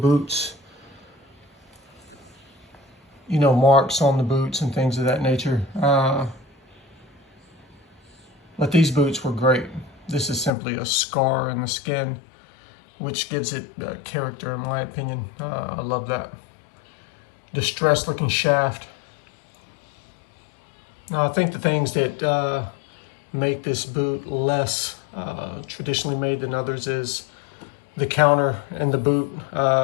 You know, marks on the boots and things of that nature. But these boots were great. This is simply a scar in the skin, which gives it character, in my opinion. I love that. Distressed looking shaft. Now, I think the things that make this boot less traditionally made than others is the counter in the boot.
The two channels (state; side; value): drops out; right; at 10.5 s